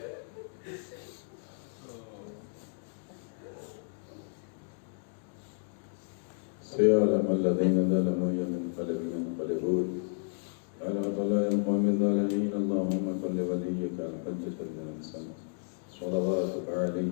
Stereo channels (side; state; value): right; silent; digital silence